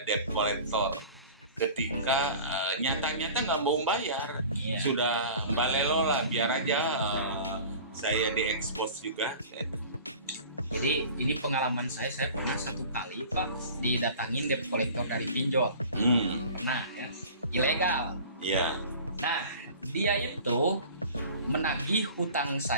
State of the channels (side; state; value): both; inverted; correlation -0.42